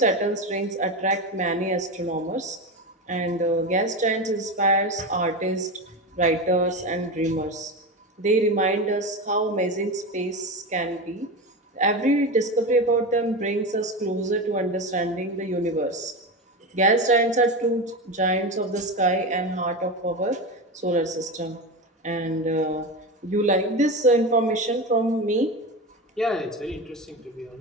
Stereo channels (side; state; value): both; normal; correlation 0.21